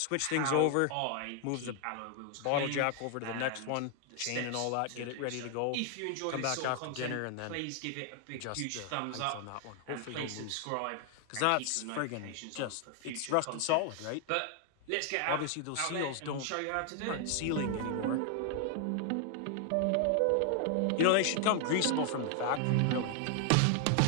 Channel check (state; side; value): different; both; correlation 0.00